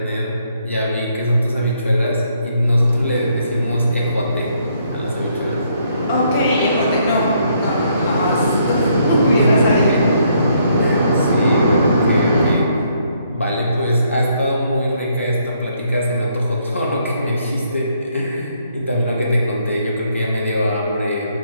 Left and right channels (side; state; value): both; inverted; correlation -0.71